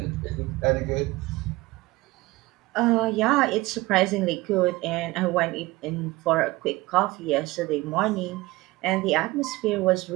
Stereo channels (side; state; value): left; quieter; 20.5 dB